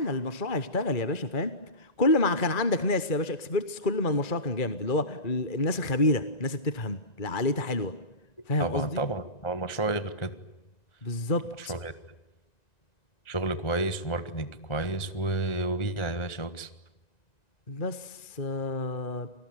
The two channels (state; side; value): late; right; 1.9 ms